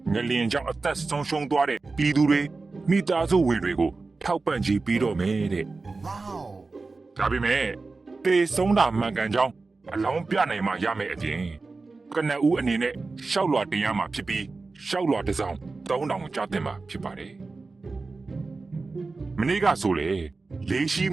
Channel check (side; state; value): left; quieter; 3.8 dB